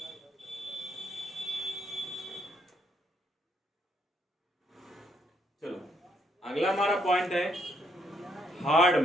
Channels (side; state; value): both; normal; correlation 0.74